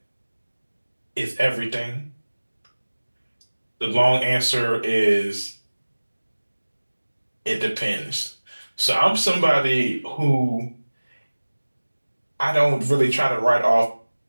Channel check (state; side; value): inverted; both; correlation -1.00